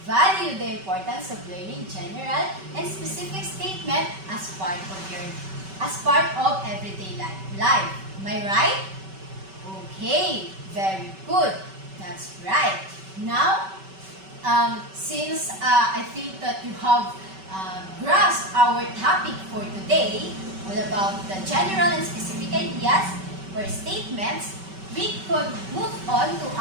valued the importance of learning general and specific statement as part of everyday life. Am I right? Okay, very good. That's right. Now, since I think that you have grasped our topic for today, all about the general and specific ideas or statements, we could move on to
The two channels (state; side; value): late; left; 5.2 ms